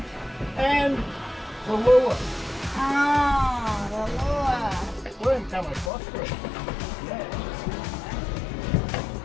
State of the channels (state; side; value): drops out; right; at 5.9 s